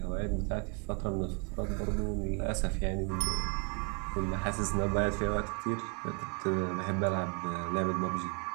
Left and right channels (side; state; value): left; quieter; 34.2 dB